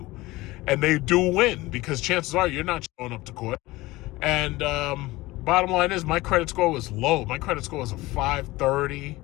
And they do win because chances are you're not showing up to court. And bottom line is my credit score was low. My credit score was a 530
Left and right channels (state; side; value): quieter; right; 19.7 dB